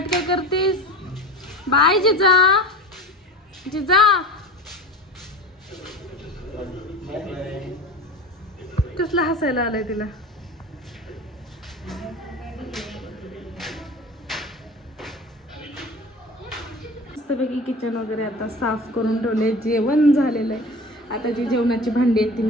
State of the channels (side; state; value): both; normal; correlation 0.34